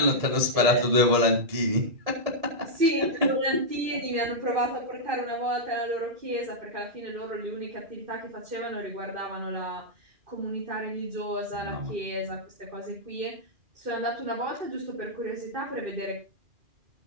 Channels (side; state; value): left; late; 2.4 ms